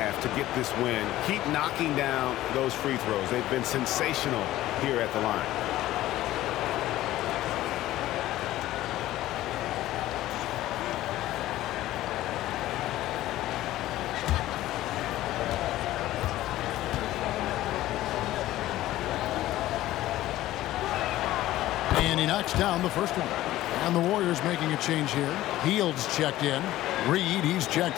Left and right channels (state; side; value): quieter; right; 15.2 dB